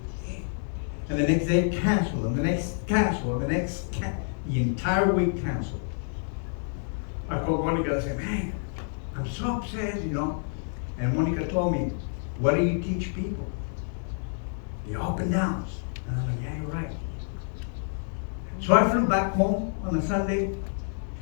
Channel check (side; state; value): right; silent; digital silence